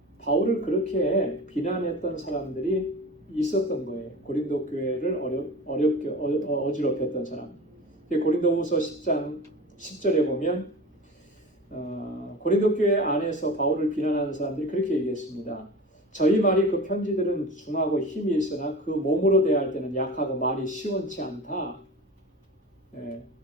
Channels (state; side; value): normal; both; correlation 0.34